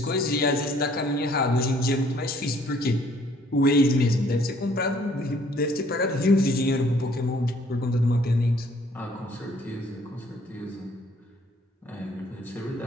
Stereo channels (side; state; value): both; normal; correlation 0.61